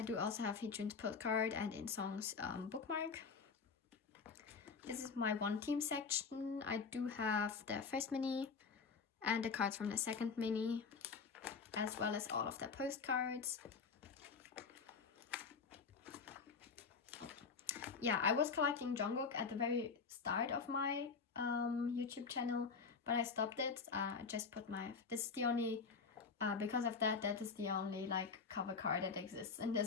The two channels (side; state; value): right; quieter; 5.3 dB